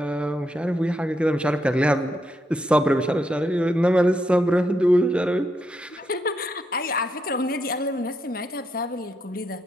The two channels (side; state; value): both; normal; correlation 0.80